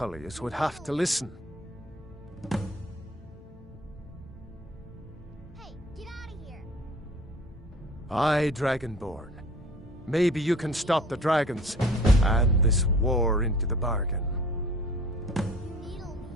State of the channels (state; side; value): normal; both; correlation 0.47